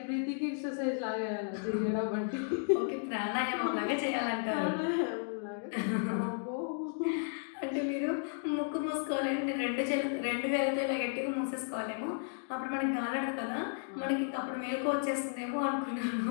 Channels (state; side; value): silent; right; digital silence